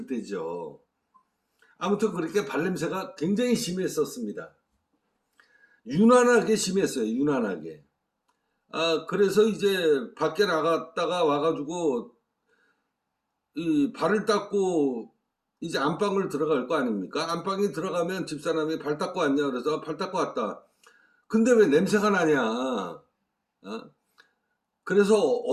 때죠. 아무튼 그렇게 발냄새가 굉장히 심했었습니다. 유난하게 심했어요. 유난하게. 그래서 이제 밖에 나갔다가 와가지고 이 발을 닦고 이제 안방을 들어갈 거 아닙니까? 안방에 들어가면 집사람이 발 닦고 왔냐 그래서 발 닦고 왔다. 근데 왜 냄새가 나냐? 그래서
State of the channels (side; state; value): both; identical; correlation 1.00